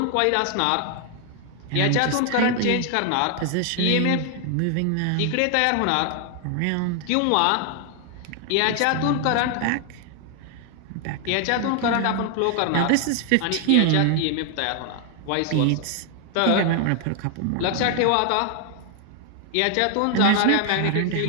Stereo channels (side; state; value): both; different; correlation 0.00